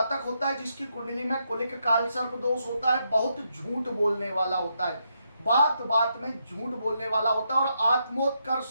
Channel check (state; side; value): inverted; both; correlation -0.80